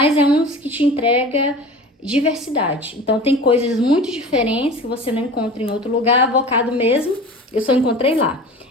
é um que te entrega diversidade. Então tem coisas muito diferentes que você não encontra em outro lugar. Avocado mesmo, eu só encontrei lá.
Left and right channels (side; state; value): both; normal; correlation 0.37